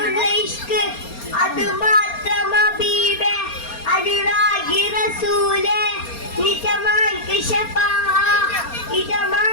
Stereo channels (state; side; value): late; right; 4.3 ms